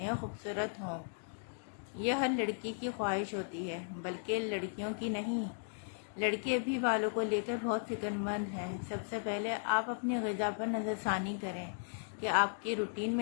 اور خوبصورت ہوں۔ یہ ہر لڑکی کی خواہش ہوتی ہے، بلکہ لڑکیوں کی نہیں۔ لڑکے بھی بالوں کو لے کر بہت فکر مند ہیں۔ سب سے پہلے آپ اپنی غذا پر نظر ثانی کریں کہ آپ کی روٹین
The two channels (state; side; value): silent; right; digital silence